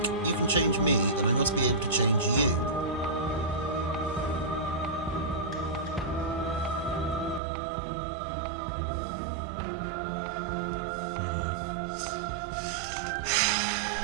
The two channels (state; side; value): drops out; left; at 7.4 s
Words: you can change me, then I must be able to change you.